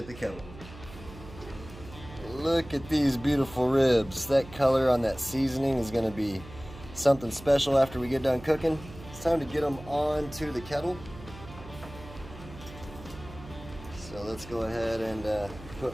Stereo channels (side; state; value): right; noise; hum, 16 dB below the sound